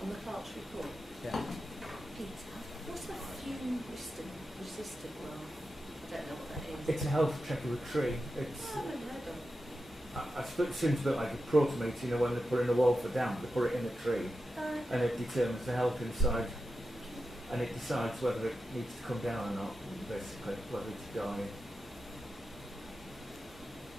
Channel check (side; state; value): both; normal; correlation 0.90